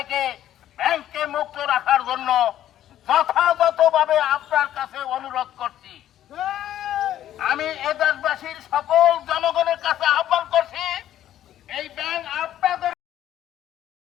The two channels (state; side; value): quieter; right; 12.0 dB